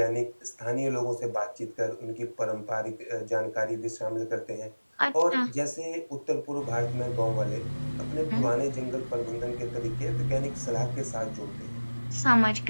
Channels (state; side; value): inverted; both; correlation -1.00